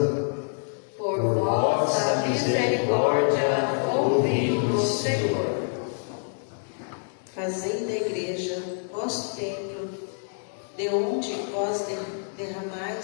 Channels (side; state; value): right; silent; digital silence